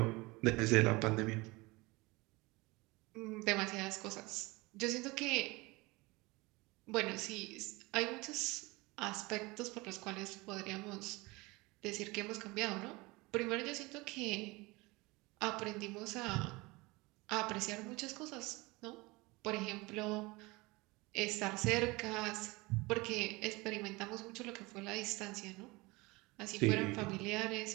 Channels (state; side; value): quieter; left; 23.5 dB